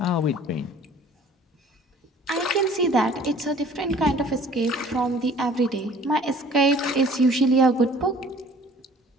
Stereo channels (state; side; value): normal; both; correlation 0.51